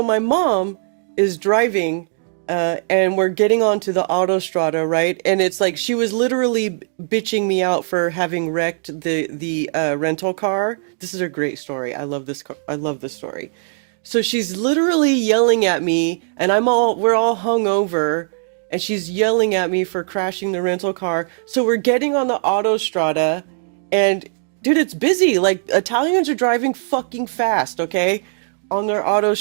my mom is driving, and we're getting onto the autostrada, right? And it's like she was literally bitching me out for having wrecked the rental car. This is a great story. I love this story. So she's literally yelling at me, and we're all hungover, and she's yelling at me for crashing the rental car. So we're getting on the autostrada, and dude, it's busy. Like, Italians are driving fucking fast, okay, on their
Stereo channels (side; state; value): left; silent; digital silence